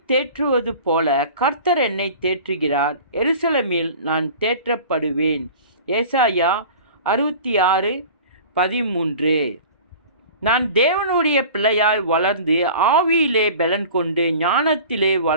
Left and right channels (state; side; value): inverted; both; correlation -0.41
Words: தேற்றுவது போல கர்த்தர் என்னை தேற்றுகிறார். எருசலேமில் நான் தேற்றப்படுவேன். ஏசாயா 66:13. நான் தேவனுடைய பிள்ளையாய் வளர்ந்து ஆவியிலே பலன் கொண்டு ஞானத்திலே